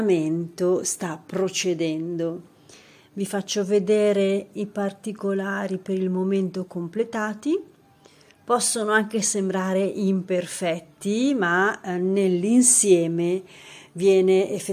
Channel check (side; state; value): both; identical; correlation 1.00